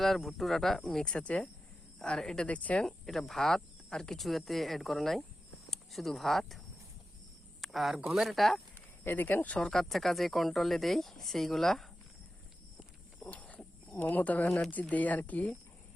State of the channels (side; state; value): both; normal; correlation 0.92